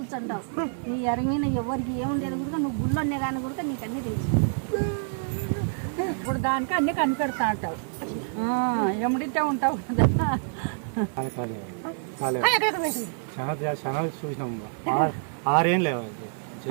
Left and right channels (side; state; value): left; silent; digital silence